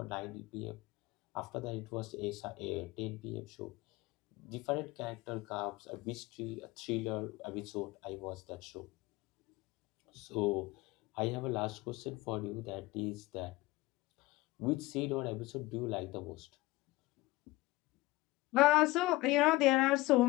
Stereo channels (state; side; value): quieter; right; 19.9 dB